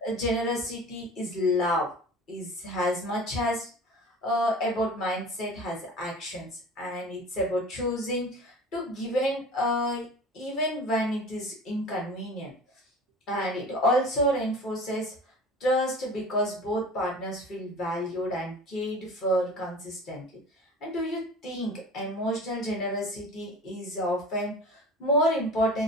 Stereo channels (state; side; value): normal; both; correlation 0.39